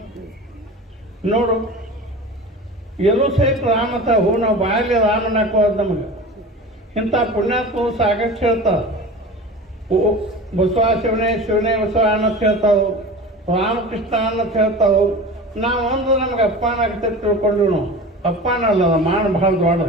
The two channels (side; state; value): both; normal; correlation 0.34